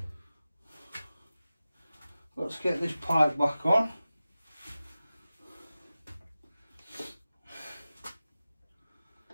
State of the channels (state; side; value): inverted; both; correlation -0.95